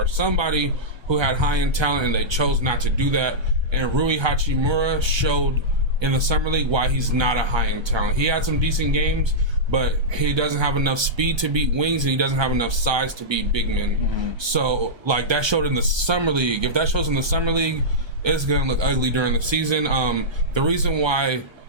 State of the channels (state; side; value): late; left; 1.3 ms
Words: somebody who had high end talent, and they chose not to do that. And Rui Hachimura showed in the summer league why he's not a high end talent. He had some decent games, but he doesn't have enough speed to beat wings, and he doesn't have enough size to beat big men. Mm-hmm. So, like, that showed in the summer league. If that shows in the summer league, it's going to look ugly during the season. The reason why